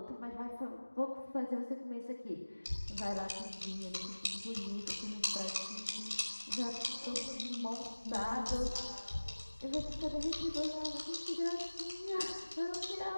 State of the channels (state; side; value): inverted; both; correlation -1.00